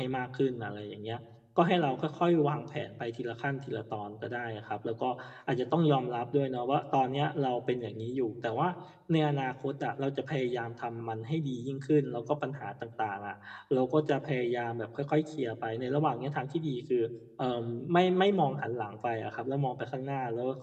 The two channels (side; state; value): both; identical; correlation 1.00